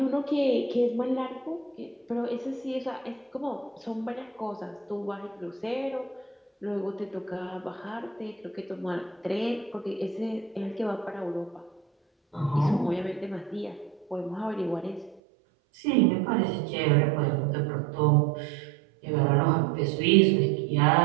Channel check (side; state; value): left; drops out; at 15.2 s